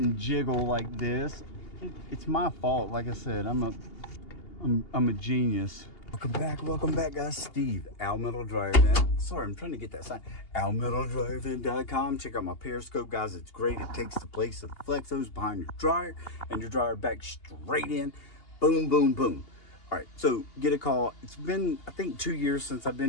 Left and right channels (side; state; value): right; late; 2.8 ms